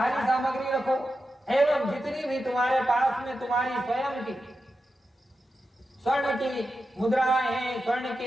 सामग्री रखो एवं जितनी भी तुम्हारे पास में तुम्हारी स्वयं की स्वर्ण की मुद्राएं हैं, स्वर्ण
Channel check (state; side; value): normal; both; correlation 0.90